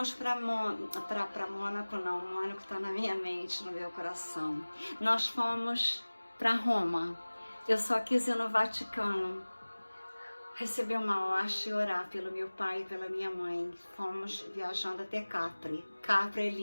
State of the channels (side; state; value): both; inverted; correlation -1.00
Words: para Mônaco, não, Mônaco está na minha mente, no meu coração. Nós fomos para Roma. Eu só quis ir no Vaticano, receber uma hoste e orar pelo meu pai e pela minha mãe. Fomos viajando até Capri. Capri é